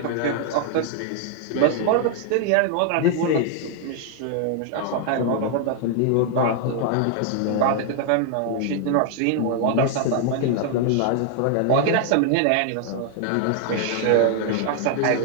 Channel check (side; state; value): both; different; correlation -0.01